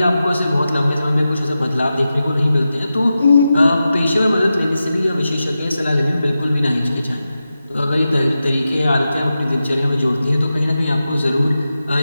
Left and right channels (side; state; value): both; inverted; correlation -0.91